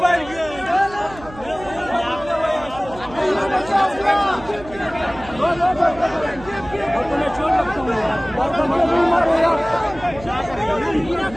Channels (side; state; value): right; noise; hum, 17 dB below the sound